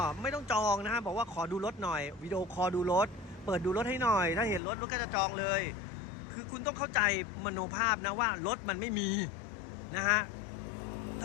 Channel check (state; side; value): drops out; right; at 4.6 s